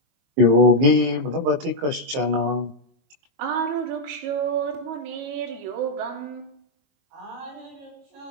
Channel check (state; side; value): late; left; 22 ms